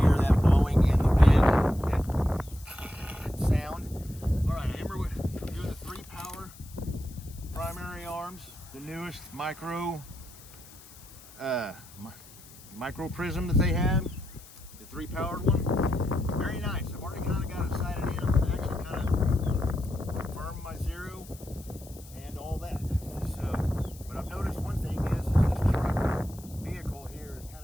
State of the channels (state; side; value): noise; left; hiss, 21 dB below the sound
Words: hear that blowing in the wind, that sound. Alright, remember we're doing the 3 power primary arms, the newest Micro Prism that they have, the 3 powered one. Very nice. I've already kind of got it sighted in. I'm actually kind of confirmed my zero and all that. So, but I've noticed one thing is this truck vehicle here is kind